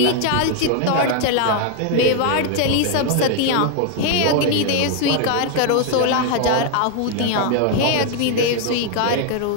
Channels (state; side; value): different; both; correlation 0.00